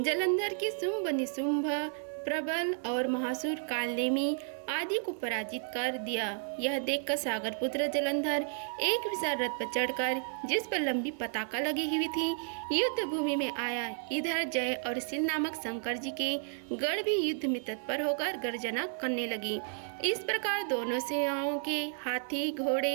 जलंधर के शुंभ निशुंभ प्रबल और महासुर कालनेमी आदि को पराजित कर दिया। यह देखकर सागर पुत्र जलंधर एक विशाल रथ पर चढ़कर, जिस पर लंबी पताका लगी हुई थी, युद्ध भूमि में आया। इधर जय और शील नामक शंकर जी के गढ़ भी युद्ध में तत्पर होकर गर्जना करने लगी। इस प्रकार दोनों सेनाओं के हाथी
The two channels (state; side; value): silent; left; 56 dB below the other